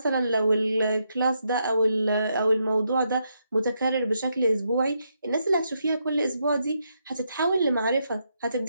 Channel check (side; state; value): both; inverted; correlation -0.80